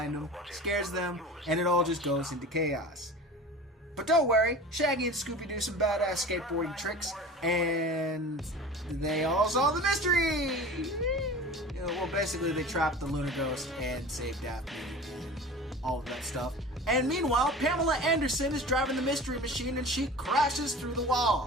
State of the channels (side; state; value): both; normal; correlation 0.37